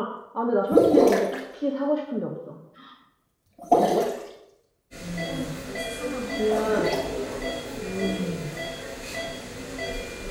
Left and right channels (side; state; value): both; identical; correlation 1.00